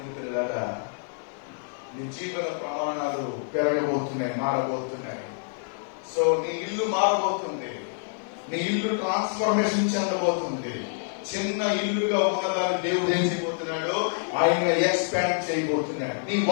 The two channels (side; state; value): right; silent; digital silence